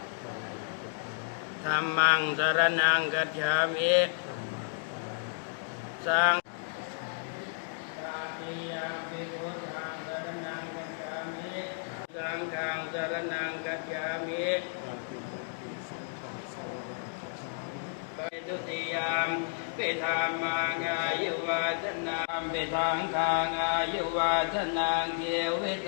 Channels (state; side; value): silent; right; digital silence